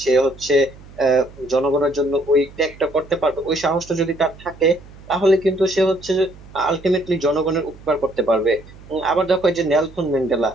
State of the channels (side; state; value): right; noise; hum, 20 dB below the sound